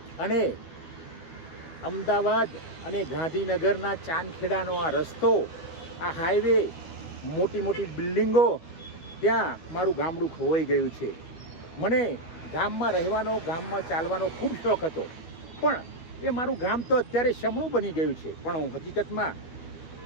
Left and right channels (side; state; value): right; late; 12 ms